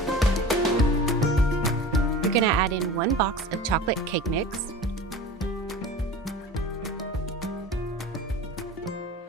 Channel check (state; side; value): normal; both; correlation 0.36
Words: You're going to add in 1 box of chocolate cake mix,